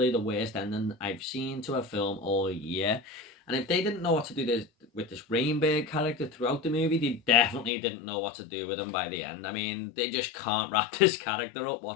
the worst ending I've seen to a film all year. And if they didn't know what to do with this Rainbird character throughout the movie, they definitely didn't know what to do with him by the end. I mean, they just can't wrap this character up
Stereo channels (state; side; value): drops out; right; at 7.7 s